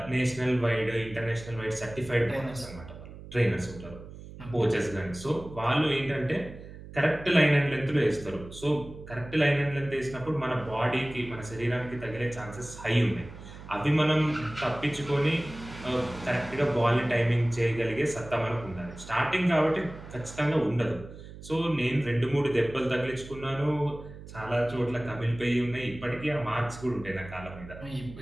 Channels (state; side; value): noise; right; hum, 15 dB below the sound